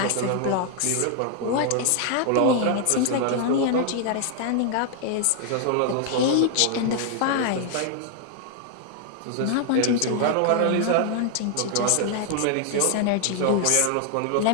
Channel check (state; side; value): different; both; correlation 0.00